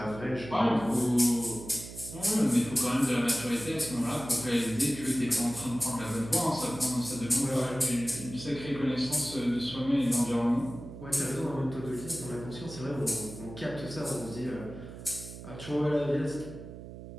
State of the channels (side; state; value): right; noise; hum, 13 dB below the sound